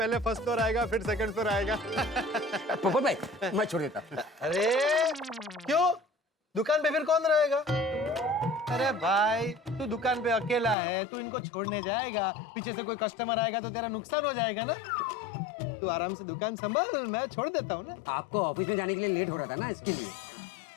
फर्स्ट फ्लोर आएगा फिर सेकंड फ्लोर आएगा। पोपट भाई मैं छोड़ देता। अरे क्यों, दुकान पे फिर कौन रहेगा? अरे भाई तू दुकान पे अकेला है, तू इनको छोड़ने जाएगा, पीछे से कोई कस्टमर आएगा तो तेरा नुकसान हो जाएगा ना। तू आराम से दुकान संभाल, मैं छोड़ देता हूँ ना। आपको ऑफिस में जाने के लिए लेट हो रहा था ना, इसके लिए।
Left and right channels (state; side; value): drops out; right; at 10.8 s